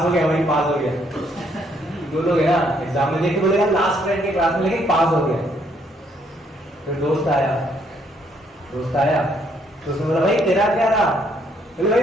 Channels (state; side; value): normal; both; correlation 0.69